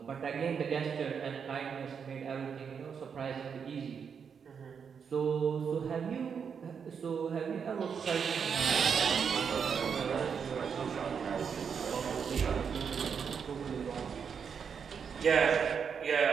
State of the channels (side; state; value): left; quieter; 6.7 dB